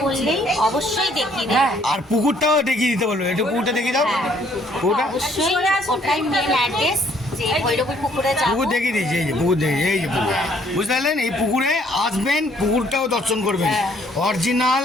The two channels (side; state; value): both; normal; correlation 0.64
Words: বললেই অবশ্যই দেখিয়ে দেবে। আর পুকুরটাও দেখিয়ে দিতে বলবো, একটু পুকুরটা দেখিয়ে দাও। পুকুরটা অবশ্যই ওটাই মেন অ্যাড্রেস, যে ভৈরবী পুকুরে যাবো। পুকুর দেখিয়ে দিয়েছি, এই যে পুকুর দেখি, এই যে পুকুর, বুঝতে পারলেন? এই পুকুরে আসবেন, পুকুরটাও দর্শন করবেন। অরিজিনাল